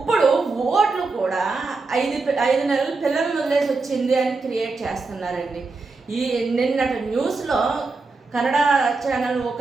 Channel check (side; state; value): left; quieter; 3.9 dB